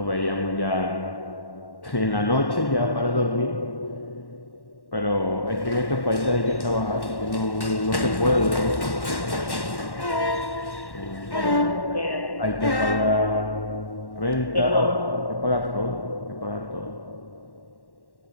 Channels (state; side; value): late; right; 1.1 ms